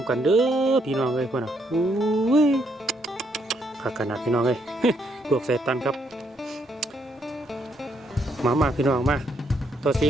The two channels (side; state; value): both; normal; correlation 0.74